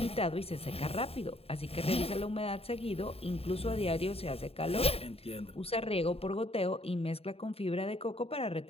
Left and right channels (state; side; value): late; right; 0.28 ms